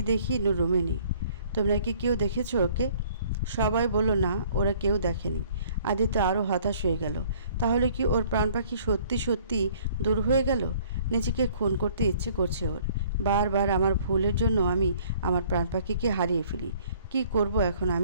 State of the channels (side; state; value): both; inverted; correlation -0.57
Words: দেখি নূর রুমে নেই। তোমরা কি কেউ দেখেছো ওকে? সবাই বলল না, ওরা কেউ দেখেনি। আদিত্য আরও হতাশ হয়ে গেল। তাহলে কি ওর প্রাণ পাখি সত্যি সত্যি দূর হয়ে গেল? নিজেকে খুন করতে ইচ্ছে করছে ওর। বারবার আমার ভুলের জন্য আমি আমার প্রাণ পাখিকে হারিয়ে ফেলি। কি করব এখন